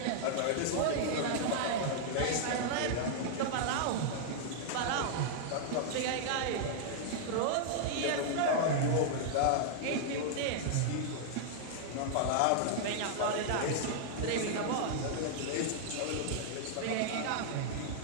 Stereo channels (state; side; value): different; both; correlation -0.01